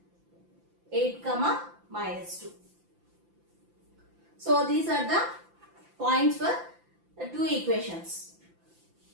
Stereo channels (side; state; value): left; late; 5.8 ms